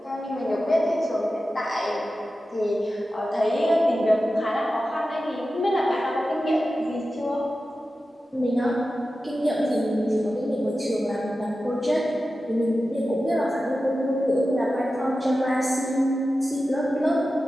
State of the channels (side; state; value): both; normal; correlation 0.93